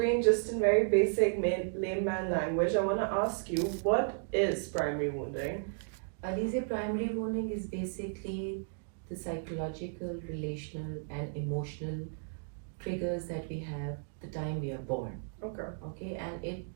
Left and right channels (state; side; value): silent; left; digital silence